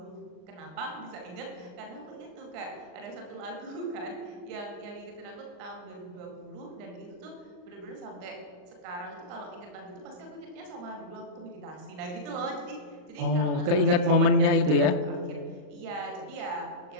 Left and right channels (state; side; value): late; left; 38 ms